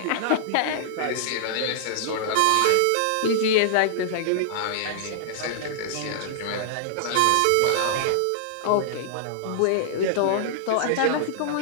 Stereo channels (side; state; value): both; different; correlation -0.01